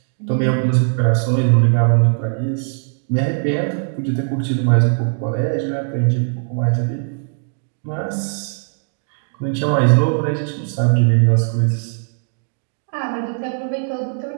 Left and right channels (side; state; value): left; silent; digital silence